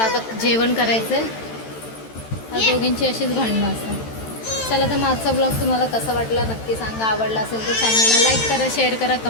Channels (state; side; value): late; right; 13 ms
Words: आता जेवण करायचं आहे. या दोघींची अशीच भांडणं असतात. चला तर माझा ब्लॉग तुम्हाला कसा वाटला नक्की सांगा. आवडला असेल तर चॅनलला लाईक करा, शेअर करा,